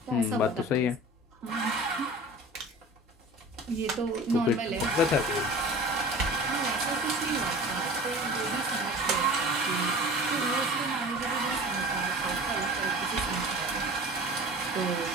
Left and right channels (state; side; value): normal; both; correlation 0.38